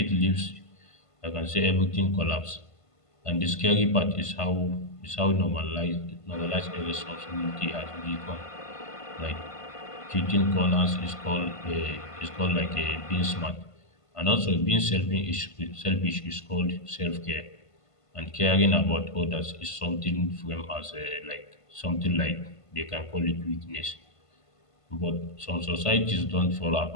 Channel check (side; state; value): right; late; 1.5 ms